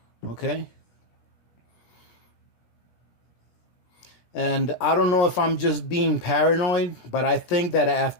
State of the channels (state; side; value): late; right; 17 ms